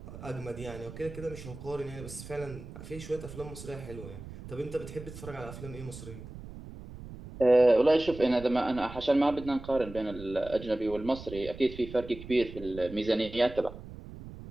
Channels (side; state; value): right; noise; rumble, 13 dB below the sound